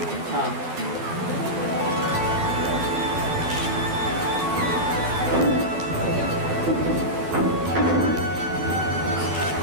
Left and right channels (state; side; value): late; left; 12 ms